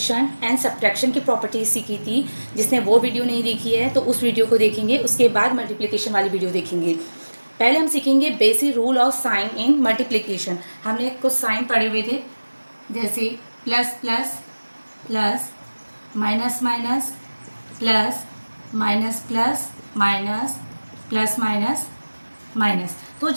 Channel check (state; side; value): inverted; both; correlation -1.00